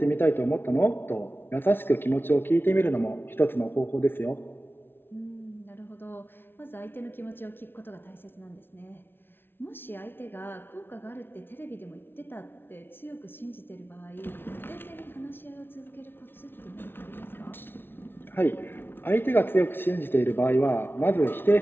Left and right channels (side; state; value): right; late; 0.11 ms